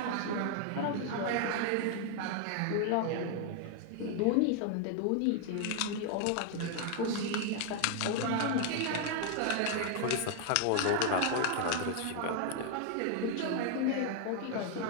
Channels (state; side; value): different; both; correlation 0.00